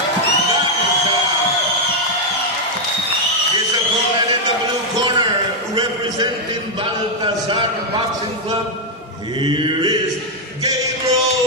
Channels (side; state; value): both; normal; correlation -0.01